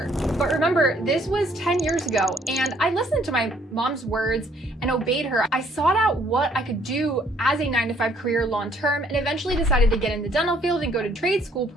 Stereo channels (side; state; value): both; normal; correlation 0.64